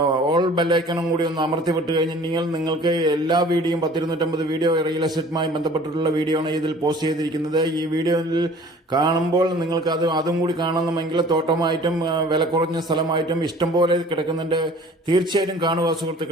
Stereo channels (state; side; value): normal; both; correlation 0.49